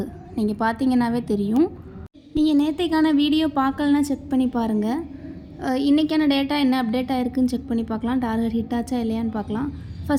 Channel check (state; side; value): identical; both; correlation 1.00